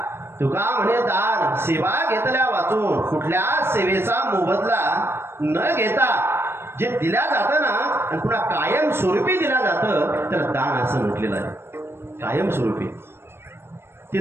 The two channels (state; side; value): late; left; 0.12 ms